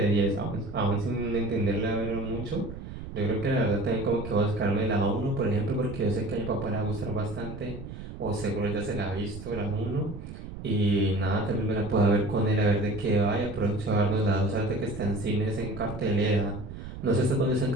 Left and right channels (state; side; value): noise; right; rumble, 11 dB below the sound